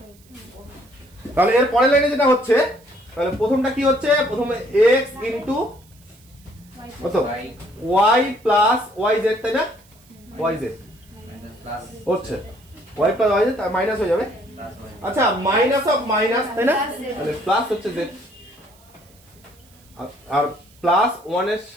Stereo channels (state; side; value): noise; right; hiss, 29 dB below the sound